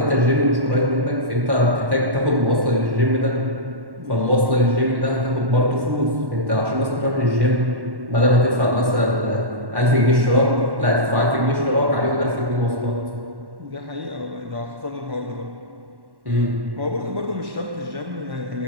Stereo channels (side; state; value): left; late; 1.1 ms